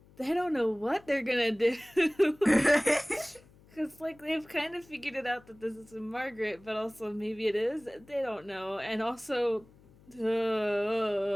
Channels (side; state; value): left; noise; hum, 26 dB below the sound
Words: they don't know what they're gonna do. Because, like, they've kind of figured it out that this is Margaret, but also maybe it is. They don't know. And also,